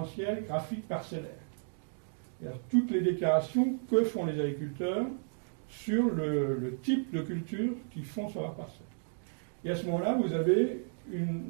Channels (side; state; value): left; silent; digital silence